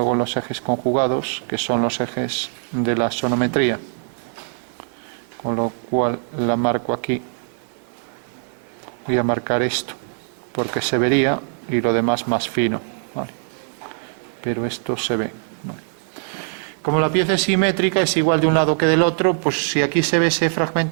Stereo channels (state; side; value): silent; left; 58 dB below the other